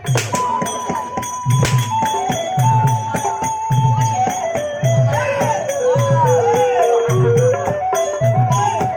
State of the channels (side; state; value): both; identical; correlation 1.00